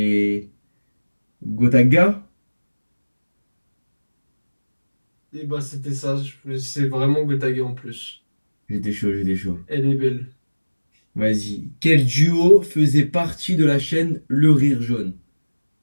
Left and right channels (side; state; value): both; inverted; correlation -1.00